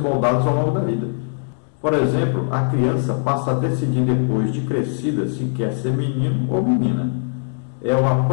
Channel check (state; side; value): silent; right; digital silence